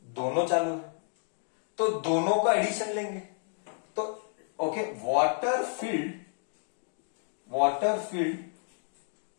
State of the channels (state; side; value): silent; right; 57 dB below the other